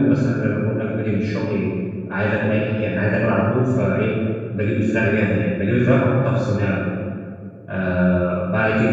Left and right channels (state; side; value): identical; both; correlation 1.00